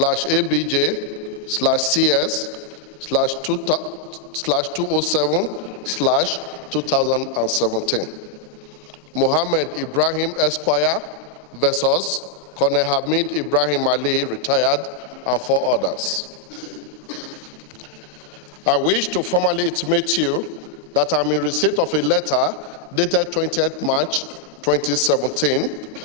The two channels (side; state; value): both; normal; correlation 0.00